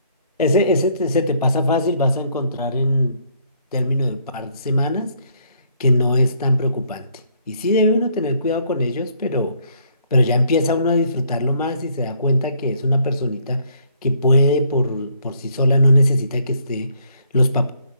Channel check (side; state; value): both; inverted; correlation -0.67